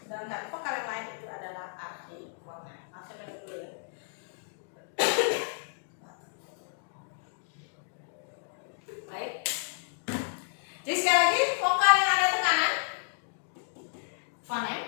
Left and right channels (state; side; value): silent; right; digital silence